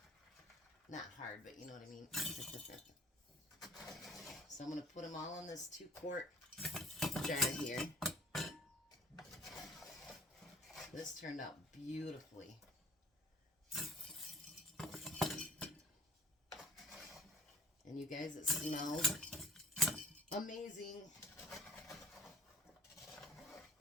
Not hard, but you know what I mean. So I'm going to put them all in this 2-quart jar here. This turned out beautifully. And you guys, it smells amazing.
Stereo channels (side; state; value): both; normal; correlation 0.52